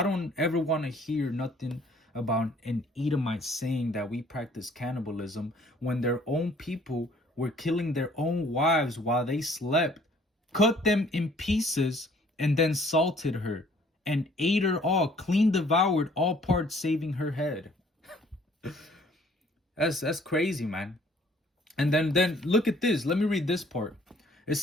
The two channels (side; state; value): both; normal; correlation 0.58